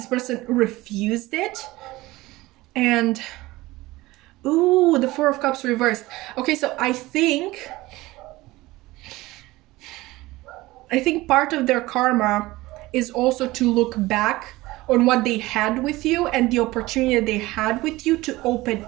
person refused it. And ooh, the Four of Cups reversed. Okay, so I think part of their karma is also to look back on what they had with you and the opportunity they had with you to open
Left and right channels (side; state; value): left; quieter; 19.3 dB